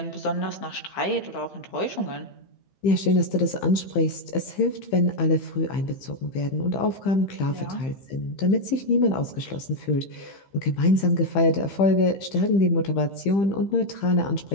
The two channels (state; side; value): late; right; 15 ms